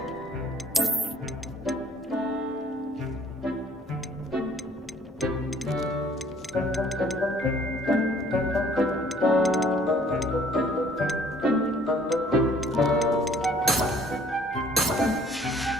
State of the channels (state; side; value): normal; both; correlation 0.58